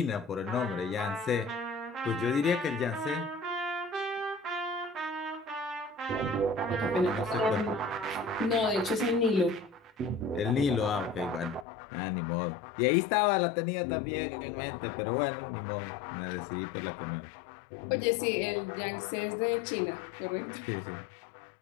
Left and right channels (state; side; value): drops out; right; at 11.7 s